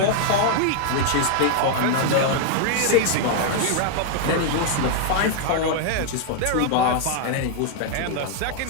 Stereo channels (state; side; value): different; both; correlation 0.00